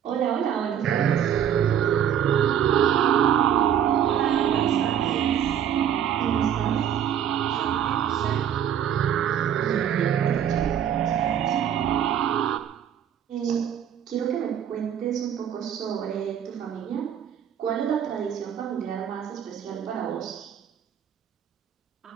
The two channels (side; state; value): left; quieter; 9.4 dB